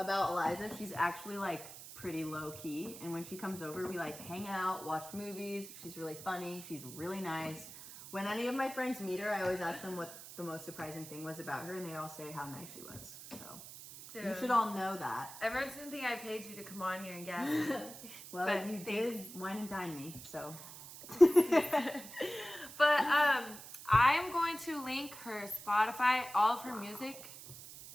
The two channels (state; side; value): noise; right; hiss, 14 dB below the sound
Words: Eliza, she's actually like pretty low key, and when she comes over, we like hang out, watch movies. She's really funny. She's really nice. When any of my friends meet her, I always ask them what the most surprising thing was about her, and they all say how nice she was. So Dude, you should all know that. Everyone's gonna think I paid you to come on here and gas me. Well, But you thanks. did wine and dine me, so. But I'm going to link her Spotify, all of her music